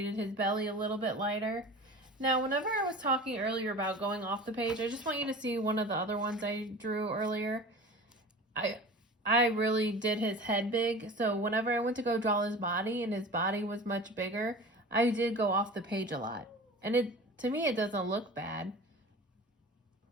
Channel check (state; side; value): normal; both; correlation 0.37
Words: his belly a little bit lighter. Now, whenever I was talking earlier about going off the page, I just want you to see one of the other ones I drew earlier. I really did his head big, so whenever I went to go draw his body and his body was much bigger, I did go off the page a lot. And to me, it doesn't look bad.